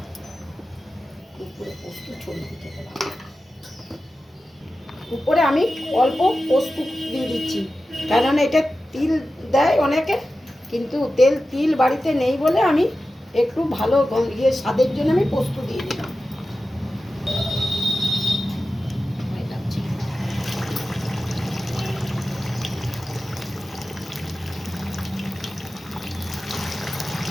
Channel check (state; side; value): normal; both; correlation 0.94